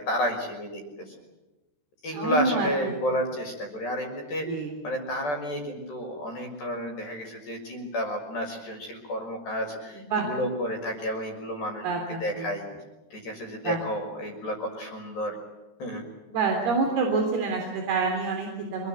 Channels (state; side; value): late; right; 13 ms